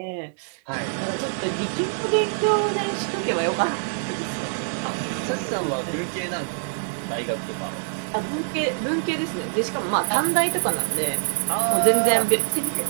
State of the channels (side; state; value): left; silent; 62 dB below the other